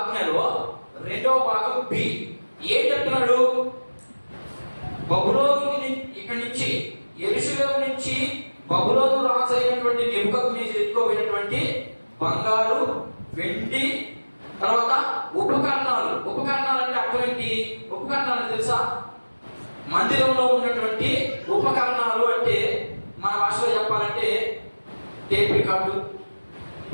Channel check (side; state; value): both; inverted; correlation -1.00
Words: రెండవ భాగం బి. ఏం చెప్తున్నాడు? బబులోను ఇక్కడి నుంచి యెరూషలేము నుంచి బబులోను రాజు అయినటువంటి నెబుకద్నెజరు ఎత్తుకోబోయినటువంటి బంగారు, వెండి, తర్వాత ఉపకరణాలు. ఉపకరణాలు అంటే అర్థం ఏంటి? ఉపకరణాలు తెలుసా? మందిరంలో ఉన్నటువంటి ఉపకరణాలు అంటే మన భాషలో చెప్పాలంటే టేప్ రికార్డు,